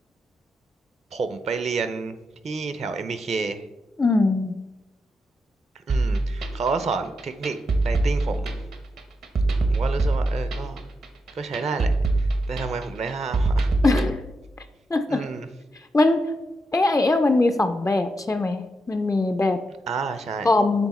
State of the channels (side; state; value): both; normal; correlation 0.85